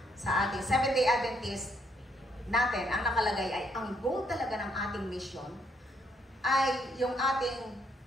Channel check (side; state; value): both; normal; correlation 0.72